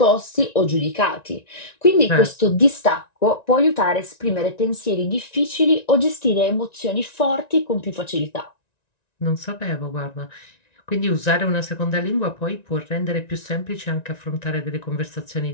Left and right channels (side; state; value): right; late; 1.9 ms